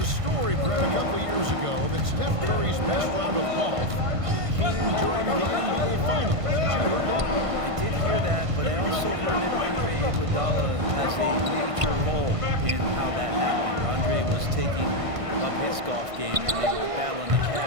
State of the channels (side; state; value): left; late; 1.5 ms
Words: story, Brett, a couple years ago that Steph Curry's best round of golf came during the NBA Finals. Did you hear that? I did hear that, but I also heard that Andre Iguodala has a major role in how that happened. Andre was taking up his golf game when they were battling the